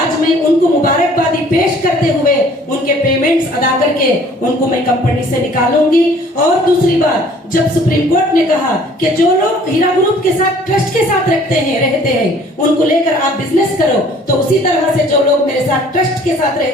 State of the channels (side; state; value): both; normal; correlation 0.54